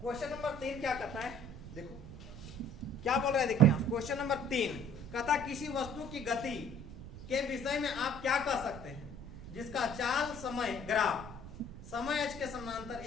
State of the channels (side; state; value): right; noise; rumble, 13 dB below the sound